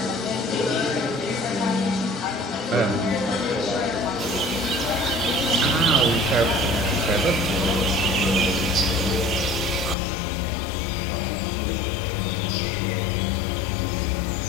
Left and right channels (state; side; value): drops out; right; at 10.0 s